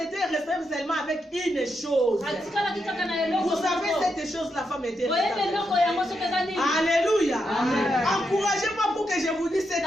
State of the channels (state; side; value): normal; both; correlation 0.83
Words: seulement avec une chose. Vous savez, cette chose, la femme était restée. Alléluia. Encouragez-moi pour que je vous dise cette